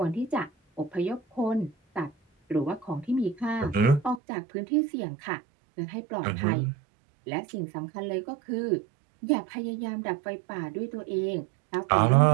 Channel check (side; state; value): left; drops out; at 4.2 s